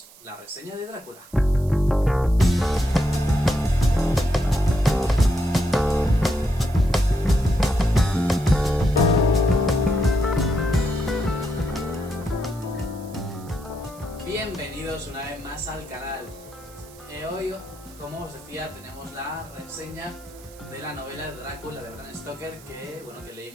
la reseña de Drácula. Bienvenidos una vez más al canal. Hoy, como os decía, tenemos la reseña de la novela de Drácula de Bram Stoker que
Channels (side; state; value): right; noise; hiss, 23 dB below the sound